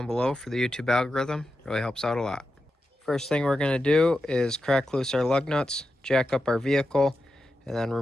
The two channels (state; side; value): normal; both; correlation 0.90